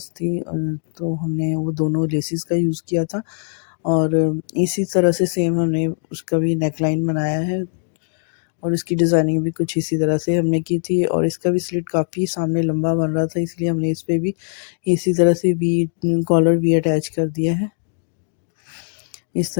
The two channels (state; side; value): silent; right; 65 dB below the other